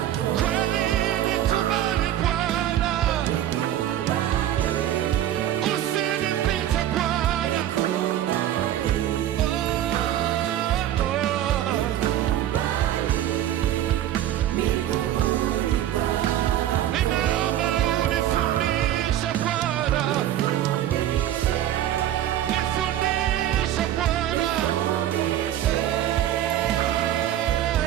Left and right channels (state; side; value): quieter; left; 12.1 dB